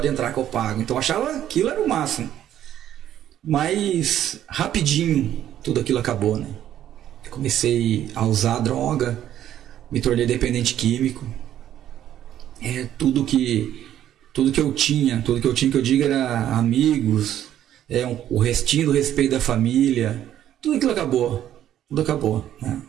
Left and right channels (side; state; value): left; quieter; 11.3 dB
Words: entrar que eu pago. Então eu achava aquilo era o máximo. Mas rapidinho tudo aquilo acabou, né? Eu comecei a usar droga, me tornei dependente químico. Tudo que eu tinha, que eu digo, era amigos, o restinho do respeito da família, tudo aquilo acabou, né?